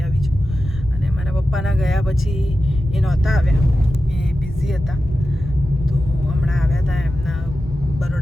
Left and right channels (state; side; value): normal; both; correlation 0.93